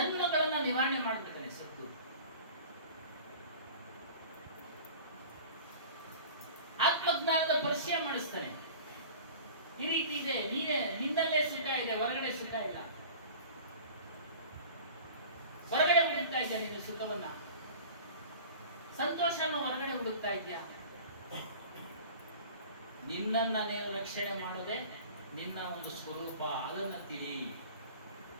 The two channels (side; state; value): both; inverted; correlation -0.41